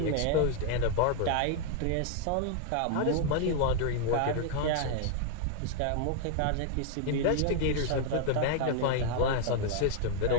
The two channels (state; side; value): different; both; correlation 0.00